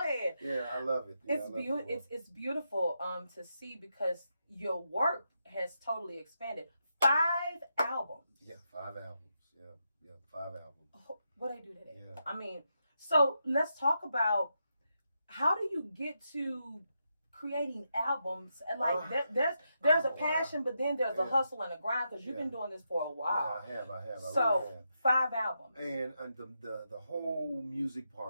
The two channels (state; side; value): inverted; both; correlation -0.84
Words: Yeah, I love it. Yeah, It's beautiful. It's beautiful to see because your work has totally expanded. 5 albums. Yeah, 5 albums. Yeah, 5 albums. Oh, what I do today. Yeah. I mean, so let's talk about how do you get to creating albums and like there's a passion, but then there's a hustle and a grind because you've been doing this for a while. Yeah, I have. So I really have. 5 albums. And the whole music